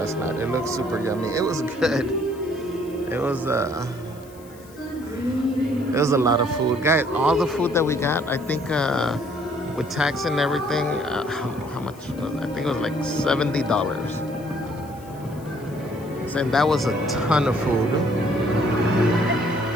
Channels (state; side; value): noise; left; hiss, 24 dB below the sound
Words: night? It looked super yummy. It was good. It was a lot of food. Guys, all the food that we got, I think with tax and everything, how much was it? I think it was like $70. And that was a ton of food.